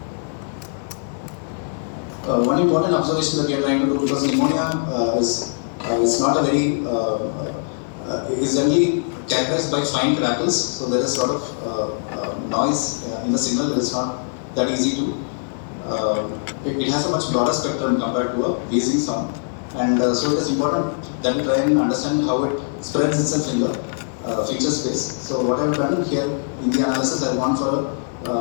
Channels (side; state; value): right; silent; digital silence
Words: One important observation that we are trying to do, because pneumonia is not a very is generally characterized by fine crackles, so there is sort of noise in the signal. It is not that easy to. It has a much broader spectrum compared to a wheezing sound, and so it is important that we try and understand how it spreads itself in the feature space. So what I have done here in the analysis, I have gone for